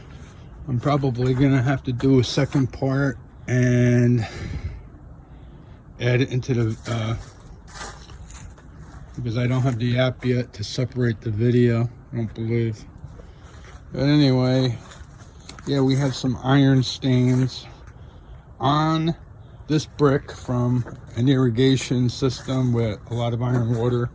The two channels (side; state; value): both; identical; correlation 1.00